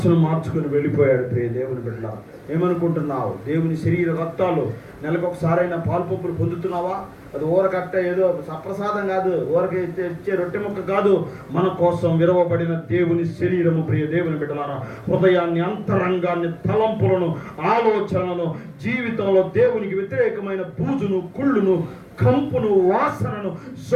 మార్చుకొని వెళ్ళిపోయాడు. ప్రియ దేవుని బిడ్డ, ఏమనుకుంటున్నావు? దేవుని శరీర రక్తాలు నెలకొకసారైనా పాల్పొప్పులు పొందుతున్నావా? అది ఊరకట్ట ఏదో సప్రసాదం కాదు, ఊరక ఇచ్చే రొట్టె ముక్క కాదు, మన కోసం విరవబడిన దేవుని శరీరము. ప్రియ దేవుని బిడ్డలారా, హృదయాన్ని, అంతరంగాన్ని, తలంపులను, ఆలోచనలను, జీవితంలో దేవునికి వ్యతిరేకమైన బూజును, కుళ్ళును, కంపును, వాసనను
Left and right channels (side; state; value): both; identical; correlation 1.00